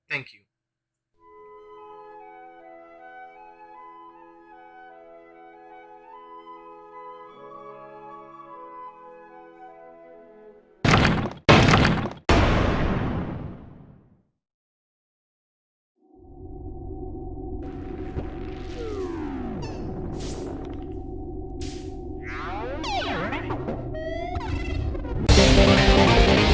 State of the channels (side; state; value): both; identical; correlation 1.00